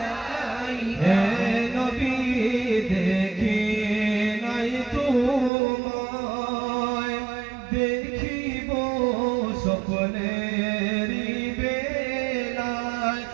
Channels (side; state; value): left; drops out; at 5.5 s